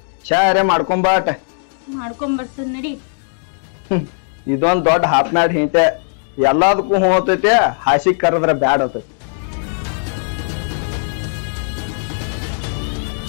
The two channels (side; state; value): right; silent; 67 dB below the other